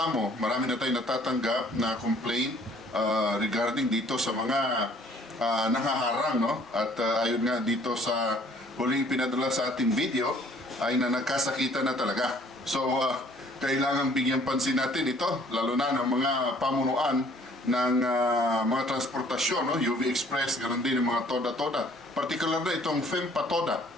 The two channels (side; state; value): both; normal; correlation 0.58